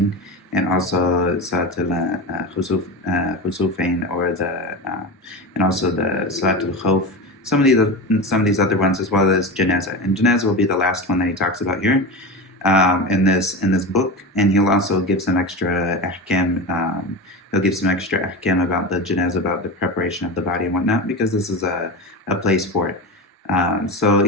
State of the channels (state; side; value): normal; both; correlation 0.24